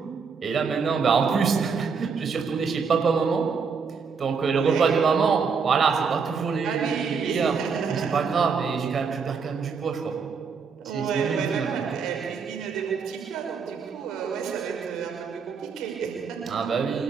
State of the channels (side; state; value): left; quieter; 5.6 dB